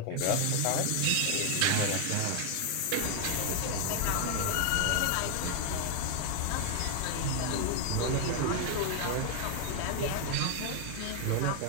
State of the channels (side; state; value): both; different; correlation 0.00